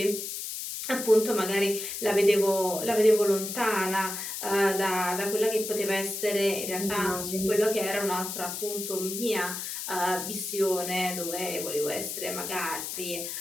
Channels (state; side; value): noise; left; hiss, 6 dB below the sound